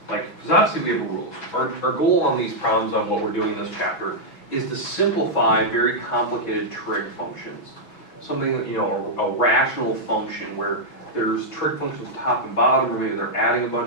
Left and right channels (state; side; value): late; right; 6.1 ms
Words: Like, because obviously we have rules. Our goal on these problems, on what we're doing in this chapter, is to simplify very complicated trig functions. Something, you know, a rational function where there's trig functions top and bottom, or maybe they're adding a